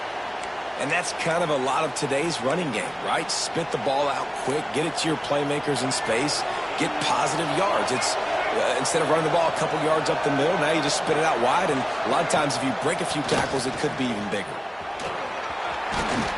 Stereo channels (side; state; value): both; identical; correlation 1.00